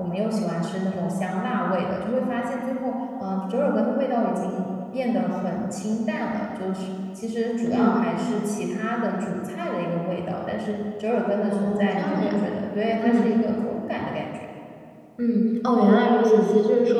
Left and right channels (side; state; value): both; identical; correlation 1.00